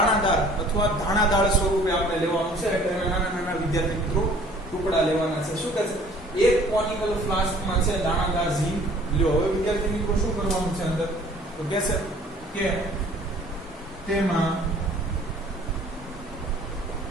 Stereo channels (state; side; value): normal; both; correlation 0.53